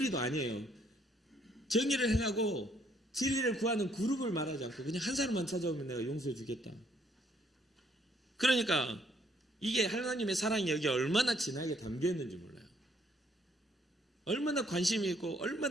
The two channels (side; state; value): both; normal; correlation 0.67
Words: 아니에요. 정의를 행하고 진리를 구하는 그룹을 말하지 않고 그냥 한 사람만 찾아오면 내가 용서해 주겠다. 그러니까 이게 하나님의 사랑이 여기 얼마나 진하게 담겨 있는지 몰라요. 얼마나 관심이 있고